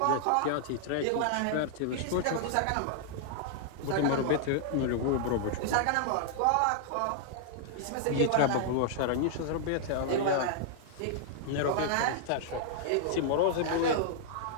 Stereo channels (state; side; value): different; both; correlation -0.01